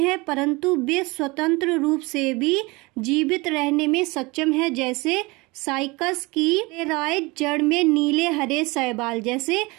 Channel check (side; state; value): left; quieter; 24.5 dB